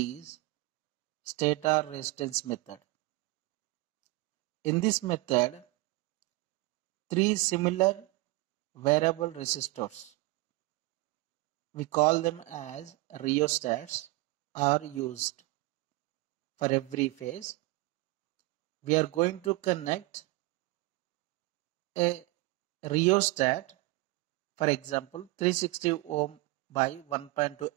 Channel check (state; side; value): quieter; left; 21.8 dB